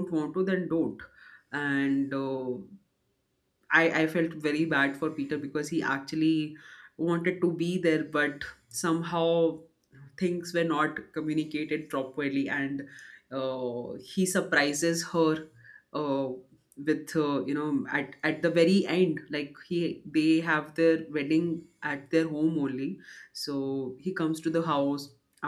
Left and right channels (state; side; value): identical; both; correlation 1.00